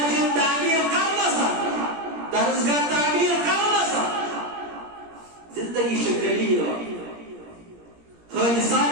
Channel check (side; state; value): left; late; 17 ms